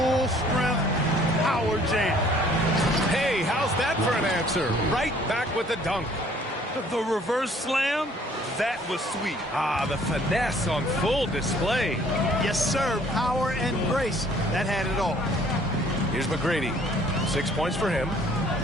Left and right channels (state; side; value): normal; both; correlation 0.58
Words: strength power jam. Hey, how's that for an answer? Right back with the dunk. The reverse slam, that was sweet. Ah, the finesse on full display. Yes, sir. Power and grace. That had it all. Here's McGrady. 6 points for him.